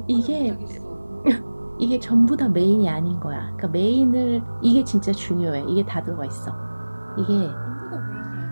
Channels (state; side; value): inverted; both; correlation -1.00